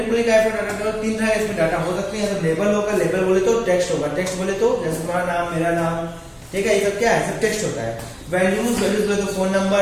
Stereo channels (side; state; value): both; identical; correlation 1.00